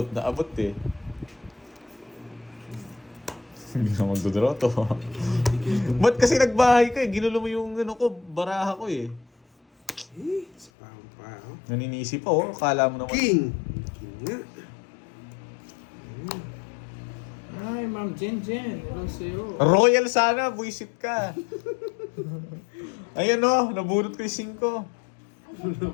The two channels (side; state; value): right; drops out; at 10.7 s